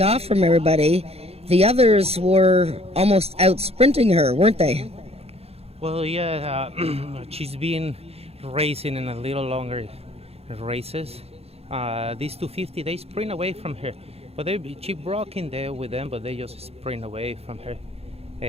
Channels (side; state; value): left; late; 0.29 ms